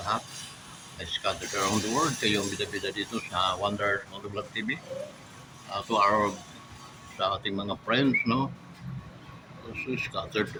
Scattered around the world, kayo ang bida-bida dito sa Wonders Motovlog TV. To our sa ating mga friends, no? Also scattered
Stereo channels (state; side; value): identical; both; correlation 1.00